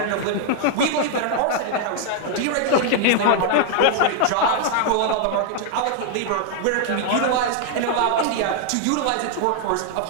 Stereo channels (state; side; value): different; both; correlation 0.00